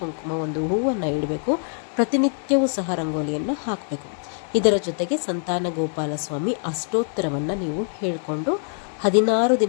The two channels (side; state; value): right; silent; 63 dB below the other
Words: ಕುಂಕುಮ ಒಂದು ಹೂವನ್ನು ಇಡಬೇಕು. ಪ್ರತಿನಿತ್ಯವೂ ಸಹ ರಂಗೋಲಿಯನ್ನು ಹಾಕಬೇಕು. ಇದರ ಜೊತೆಗೆ ಸಂತಾನ ಗೋಪಾಲ ಸ್ವಾಮಿ ಅಷ್ಟೋತ್ತರವನ್ನು ನೀವು ಹೇಳಿಕೊಂಡು 16